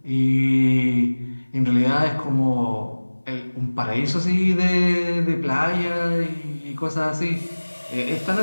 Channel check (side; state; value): both; inverted; correlation -1.00